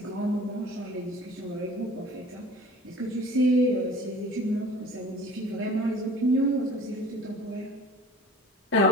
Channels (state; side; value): normal; both; correlation 0.44